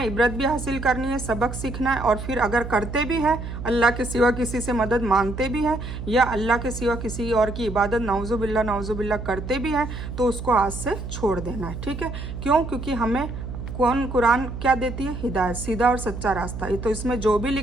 इबरत भी हासिल करनी है, सबक सीखना है। और फिर अगर करते भी हैं, अल्लाह के सिवा किसी से मदद मांगते भी हैं, या अल्लाह के सिवा किसी और की इबादत नाउजुबिल्ला करते भी हैं, तो उसको आज से छोड़ देना है। ठीक है, क्यों? क्योंकि हमें कुरान क्या देती है? हिदायत, सीधा और सच्चा रास्ता। तो इसमें जो भी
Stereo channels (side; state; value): right; noise; hum, 8 dB below the sound